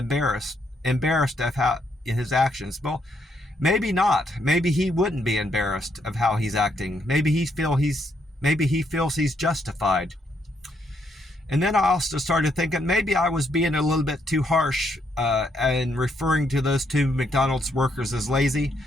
of how his actions. Well, maybe not. Maybe he wouldn't be embarrassed of how he's acting. Maybe he feels he's justified. And then I also started thinking maybe I was being a little bit too harsh and referring to those two McDonald's workers as lazy.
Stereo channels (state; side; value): normal; both; correlation 0.74